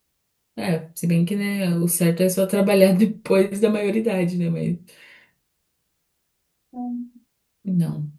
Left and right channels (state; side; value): identical; both; correlation 1.00